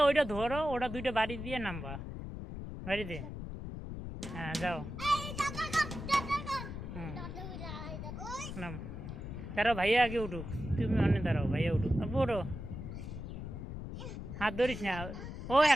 ওইটা ধরো, ওটা দুইটা বাড়ি দিয়ে নামবা, বাড়ি দিয়ে। হ্যাঁ যাও। নাম দাঁড়াও, ভাইয়া আগে উঠুক, তুমি অনেক দাঁড়াও, ভাইয়া উঠুক। আব্বু ওঠো, হাত ধরিস না, ও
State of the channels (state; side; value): noise; left; rumble, 8 dB below the sound